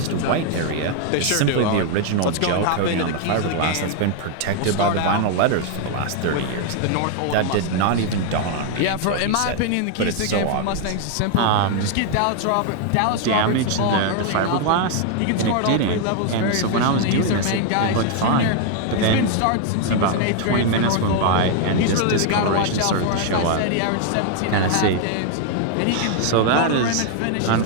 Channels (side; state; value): both; different; correlation 0.00